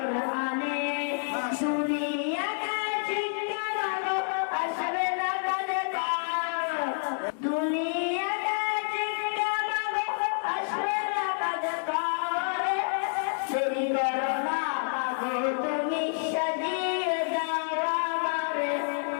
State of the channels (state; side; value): silent; right; 59 dB below the other